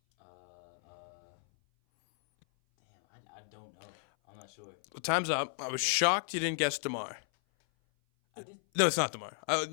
I don't know. I'm not sure. Well, time's up. I was Okay. shocked you didn't guess DeMar. I did. No, it's not DeMar.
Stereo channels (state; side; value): silent; right; 55 dB below the other